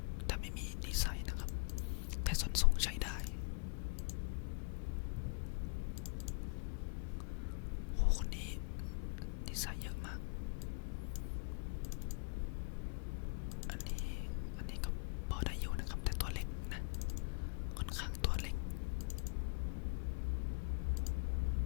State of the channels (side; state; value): right; quieter; 34.2 dB